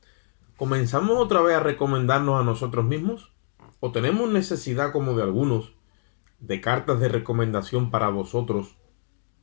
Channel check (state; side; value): silent; right; digital silence